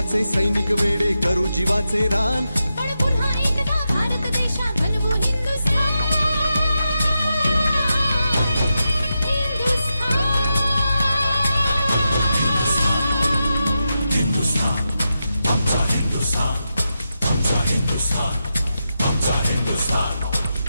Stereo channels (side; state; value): both; inverted; correlation -0.88